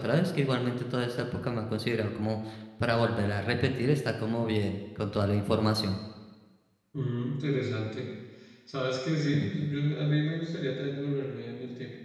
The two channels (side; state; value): both; identical; correlation 1.00